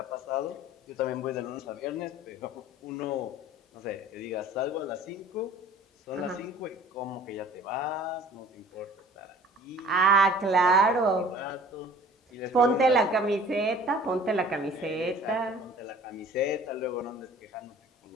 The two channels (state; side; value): normal; both; correlation 0.48